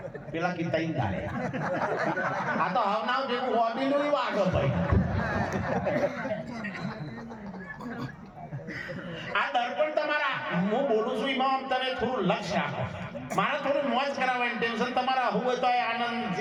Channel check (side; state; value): both; identical; correlation 1.00